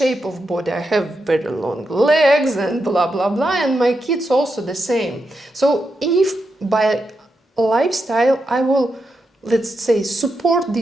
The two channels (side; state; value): both; normal; correlation 0.85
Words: of body. I have very long legs and blah blah blah, and my kids also the same. So if by lifestyle I will, let's say, support